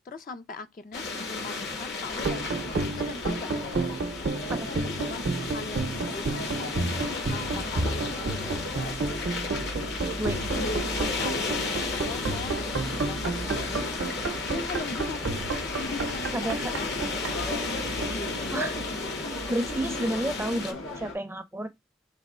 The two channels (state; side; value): normal; both; correlation 0.47